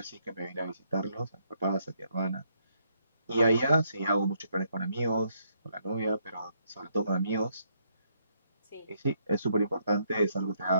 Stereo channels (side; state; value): both; inverted; correlation -0.74